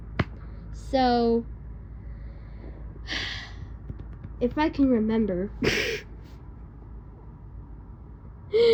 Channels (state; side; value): identical; both; correlation 1.00